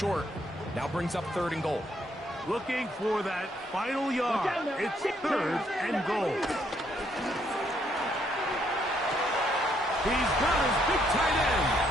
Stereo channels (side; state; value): both; normal; correlation 0.72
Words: Now brings up 3rd and goal. Looking for that final yard. It's 3rd and goal. He's got his big tight end.